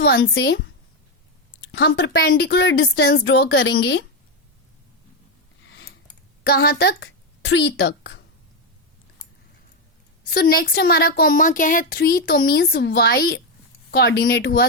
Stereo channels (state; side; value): normal; both; correlation 0.06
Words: से हम परपेंडिकुलर डिस्टेंस ड्रॉ करेंगे कहां तक, 3 तक। सो नेक्स्ट हमारा कॉमा क्या है, 3, तो मीन्स y कोऑर्डिनेट हुआ